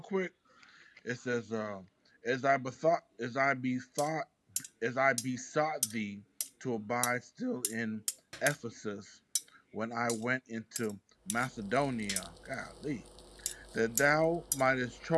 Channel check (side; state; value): both; identical; correlation 1.00